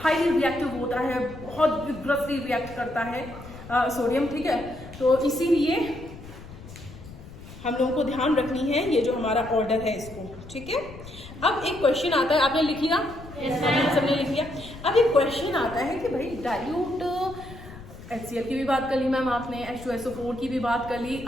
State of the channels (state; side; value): noise; left; rumble, 15 dB below the sound